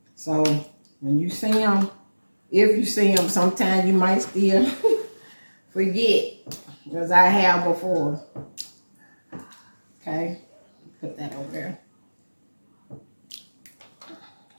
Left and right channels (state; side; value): inverted; both; correlation -1.00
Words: So, when you see them, if you see them, sometimes you might still forget. Because I have before. Okay. Put that over there.